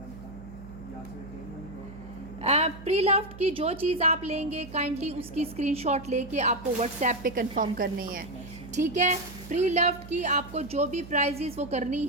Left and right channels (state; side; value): noise; right; hum, 15 dB below the sound